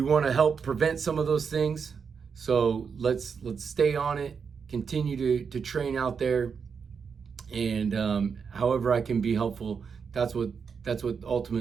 want to help prevent some of those things. So let's stay on it, continue to train out there, and however I can be helpful, that's what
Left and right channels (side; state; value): left; quieter; 6.1 dB